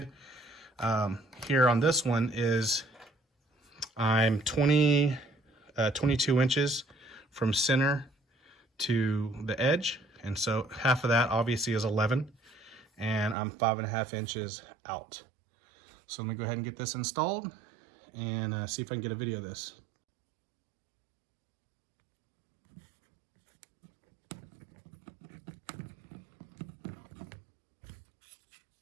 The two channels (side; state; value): left; drops out; at 13.4 s